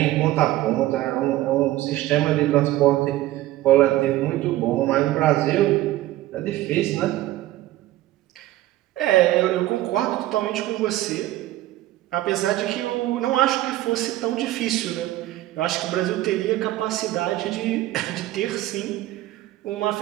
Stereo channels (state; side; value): quieter; left; 15.7 dB